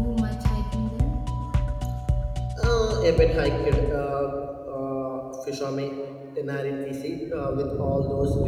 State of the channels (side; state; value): both; identical; correlation 1.00